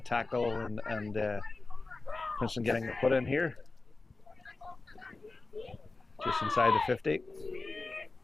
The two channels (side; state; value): right; quieter; 3.5 dB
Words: tackle, and Princeton getting the put in here. Just inside the 50.